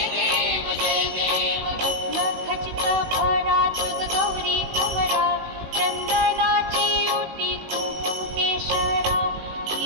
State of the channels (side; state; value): left; late; 19 ms